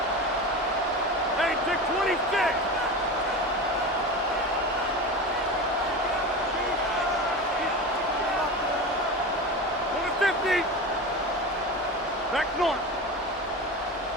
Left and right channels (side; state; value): both; normal; correlation 0.27